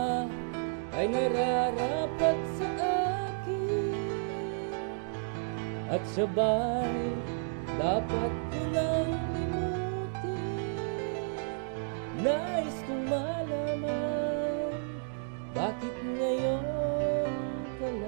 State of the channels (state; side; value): silent; left; digital silence